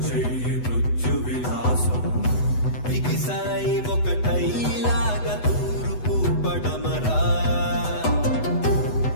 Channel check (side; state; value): right; late; 8.0 ms